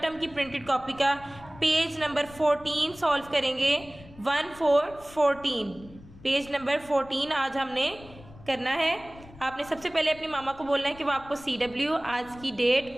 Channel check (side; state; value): left; noise; rumble, 20 dB below the sound